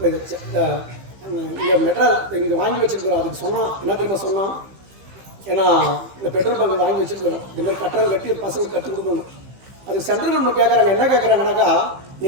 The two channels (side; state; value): left; late; 15 ms